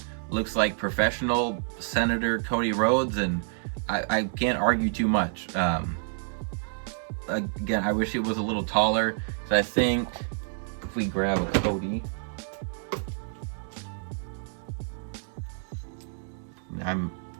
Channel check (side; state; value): left; silent; digital silence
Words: looks like professional Senator Cody Rhodes, and I can't argue too much. Again, I wish it was a little taller, so I think if we grab a Cody, I'm